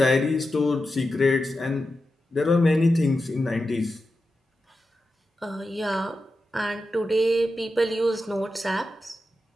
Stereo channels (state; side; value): normal; both; correlation 0.90